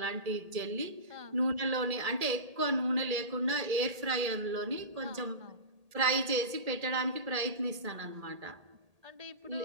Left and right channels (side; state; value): left; late; 1.8 ms